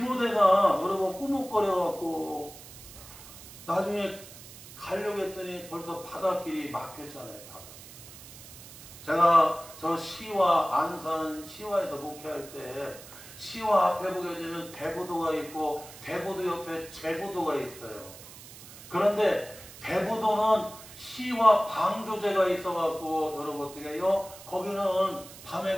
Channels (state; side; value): noise; right; hiss, 17 dB below the sound